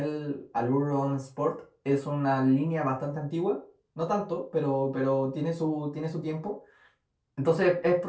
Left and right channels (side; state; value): both; identical; correlation 1.00